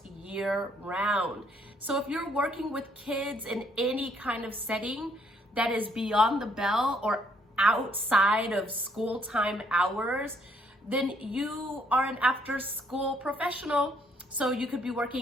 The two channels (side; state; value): both; normal; correlation 0.67